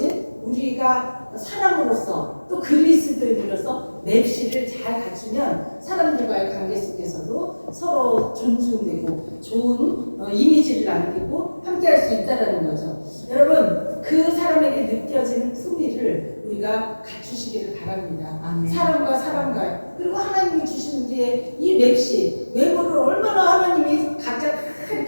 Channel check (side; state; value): both; inverted; correlation -1.00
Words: 우리가 사람으로서 또 그리스도인으로서 맵시를 잘 갖추면 사람들과의 관계 속에서도 서로 존중되고 좋은 이미지를 남기고 함께할 수 있다는 거죠. 여러분, 그 사람에게 느껴지는 품위를 우리가 갖추시기를 바랍니다. 아멘. 사람과 사람과, 그리고 하나님이 주신 우리의 이 맵시, 외모를 얼마나 하나님이 각자